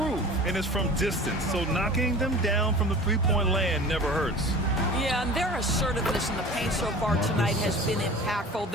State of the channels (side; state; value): both; normal; correlation 0.39